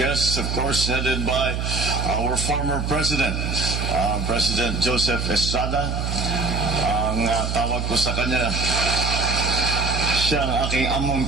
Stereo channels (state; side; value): noise; right; hum, 2 dB below the sound